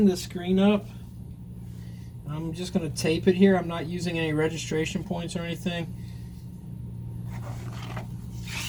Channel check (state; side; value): identical; both; correlation 1.00